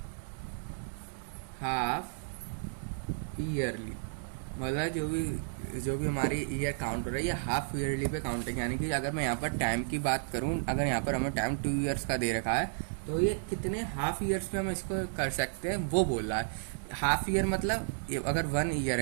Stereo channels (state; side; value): silent; left; 56 dB below the other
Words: half yearly, मतलब जो भी हमारी ईयर काउंट हो रही है ये हाफ ईयरली पे काउंट है। यानी कि अगर मैं यहाँ पर टाइम की बात करूँ, अगर यहाँ पर हमें टाइम 2 ईयर्स का दे रखा है तो ये कितने हाफ ईयर्स में हम इसको कर सकते हैं वो बोल रहा है। हाफ ईयर मतलब अगर 1 ईयर